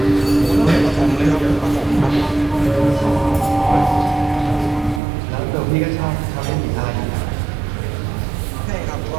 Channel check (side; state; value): left; drops out; at 5.0 s